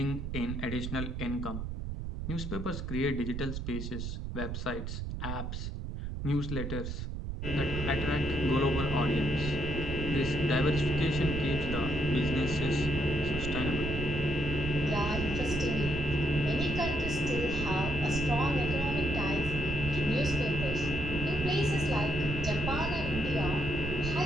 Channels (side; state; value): right; noise; rumble, 5 dB below the sound